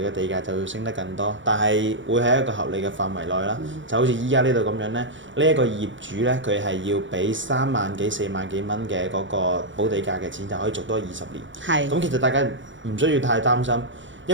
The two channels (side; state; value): left; late; 0.55 ms